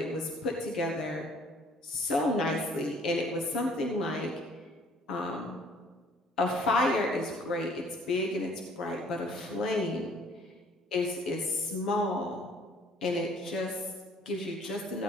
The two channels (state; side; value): normal; both; correlation 0.58